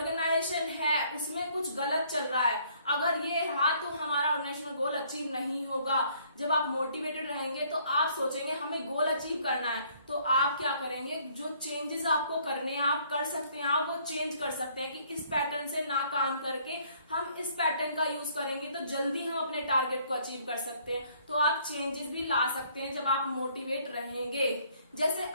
है उसमें कुछ गलत चल रहा है, अगर ये रहा तो हमारा ऑर्गेनाइजेशनल गोल अचीव नहीं होगा। जब आप मोटिवेटेड रहेंगे तो आप सोचेंगे हमें गोल अचीव करना है, तो आप क्या करेंगे, जो चेंजेस आपको करने हैं आप कर सकते हैं, आप वो चेंज कर सकते हैं कि इस पैटर्न से ना काम करके हम इस पैटर्न का यूज करेंगे तो जल्दी हम अपने टारगेट को अचीव कर सकते हैं। तो आप चेंजेस भी ला सकते हैं जब आप मोटिवेट रहेंगे। जैसे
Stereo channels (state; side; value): inverted; both; correlation -0.63